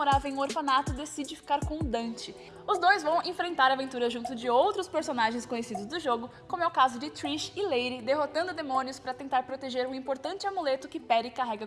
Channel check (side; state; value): both; identical; correlation 1.00